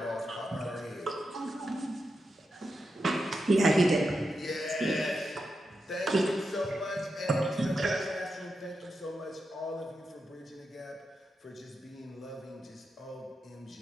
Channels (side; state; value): both; normal; correlation 0.87